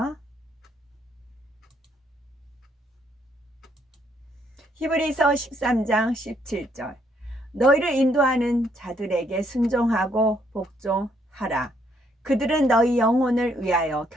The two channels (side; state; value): both; normal; correlation 0.71